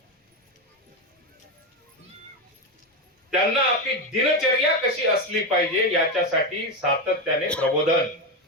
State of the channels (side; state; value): both; normal; correlation 0.12